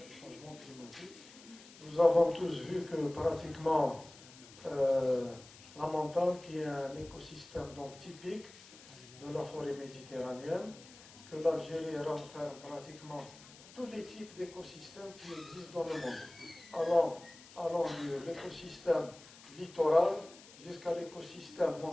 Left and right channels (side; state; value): left; noise; hiss, 20 dB below the sound